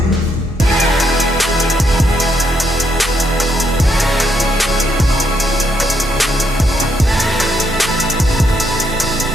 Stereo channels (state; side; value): normal; both; correlation 0.76